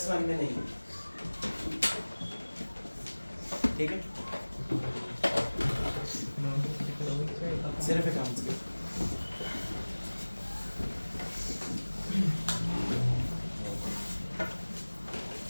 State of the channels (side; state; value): both; inverted; correlation -1.00